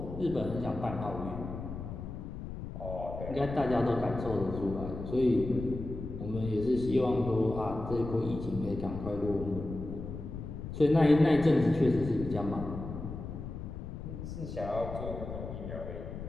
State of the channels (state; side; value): noise; left; rumble, 8 dB below the sound